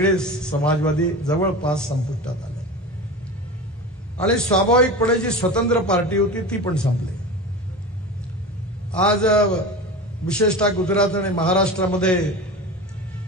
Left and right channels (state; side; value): normal; both; correlation 0.29